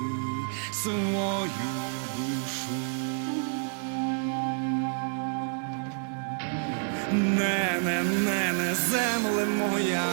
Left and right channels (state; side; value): silent; left; 57 dB below the other